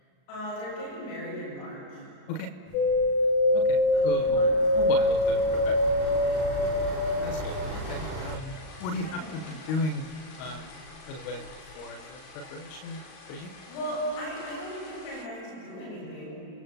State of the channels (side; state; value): right; late; 38 ms